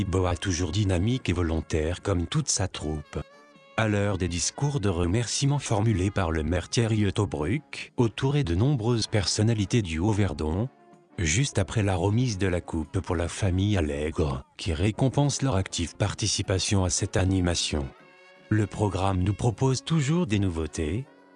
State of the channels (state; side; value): identical; both; correlation 1.00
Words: toujours dynamique et volontaire comme toute sa troupe. À l'heure des discours de remerciements formulés par le maire Thierry Autobruck, entouré de nombreuses personnalités du Haut-Verdon, juste après la remise de la coupe pour la famille Allègre, qui récompense leur active participation à cette animation. Le programme nous propose toujours des nouveautés.